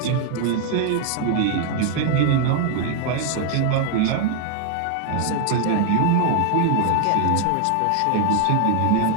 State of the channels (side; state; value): both; different; correlation 0.00